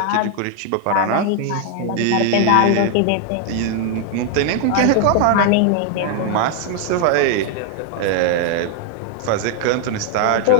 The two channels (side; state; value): both; different; correlation 0.00